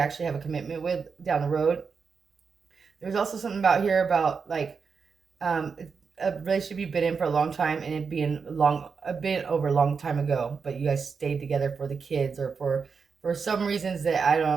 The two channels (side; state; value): left; quieter; 5.5 dB